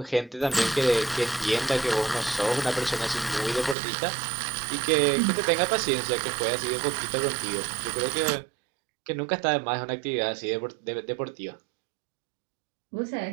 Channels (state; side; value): drops out; left; at 3.8 s